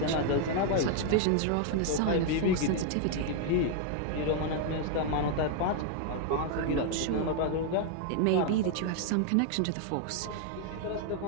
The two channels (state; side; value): different; both; correlation 0.00